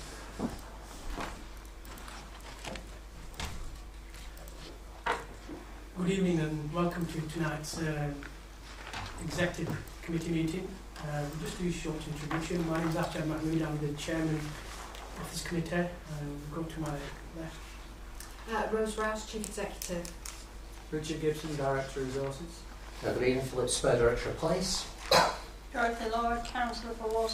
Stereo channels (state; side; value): identical; both; correlation 1.00